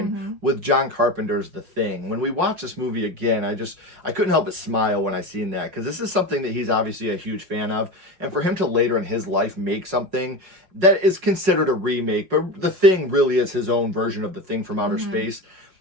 with John Carpenter's The Thing. When we watch this movie again, I couldn't help but smile when I seen that, because this is something that he's obviously a huge fan of, and for him to later in his life make something that is considered a remake, but The Thing really is his own version of The Thing from outer space.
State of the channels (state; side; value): late; left; 5.4 ms